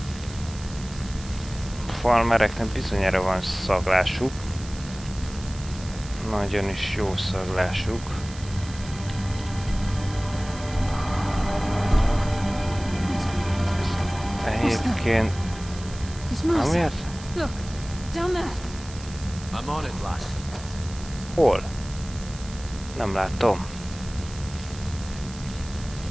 Farmereknek bizonyára van szaglásuk. Nagyon is jó szaglásuk. Egyébként... Amiért? Look, down there. I'm on it, lass. Hol? Nem látom.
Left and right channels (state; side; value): noise; right; hiss, 16 dB below the sound